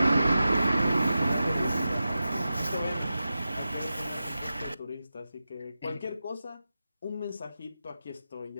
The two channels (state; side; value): inverted; both; correlation -0.93